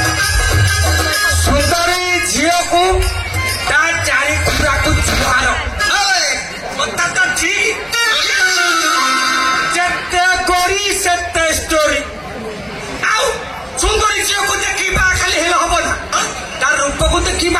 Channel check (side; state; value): both; identical; correlation 1.00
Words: सुंदरी झील को चारि खुरा को छुआर कथा तो ठीक जेते करी सेते स्टोरी आउ सुंदरी झील को देखी बा खाली हेल हबो ना तार रूप को देखी